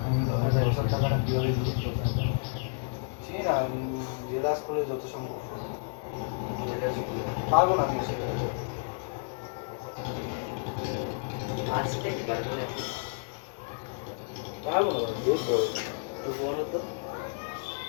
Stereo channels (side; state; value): right; silent; 56 dB below the other